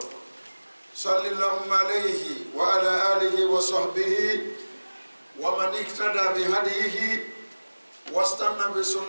صلى الله عليه وعلى آله وصحبه ومن اهتدى بهديه واستنى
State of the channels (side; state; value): both; inverted; correlation -1.00